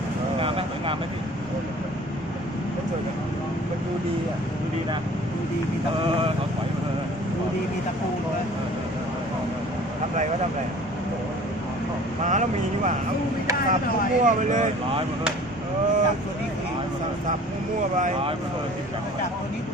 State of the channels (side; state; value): both; normal; correlation 0.48